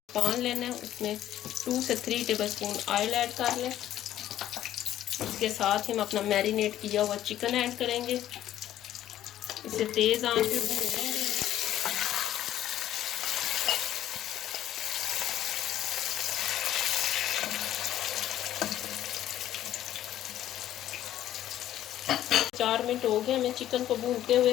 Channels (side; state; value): right; quieter; 12.4 dB